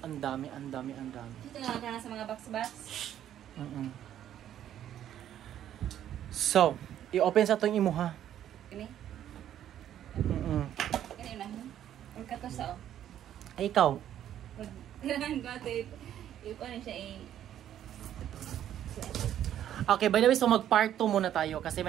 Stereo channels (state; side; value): quieter; left; 11.0 dB